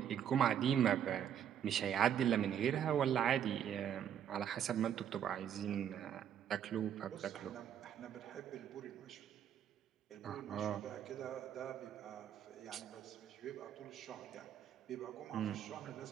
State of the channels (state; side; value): quieter; left; 9.3 dB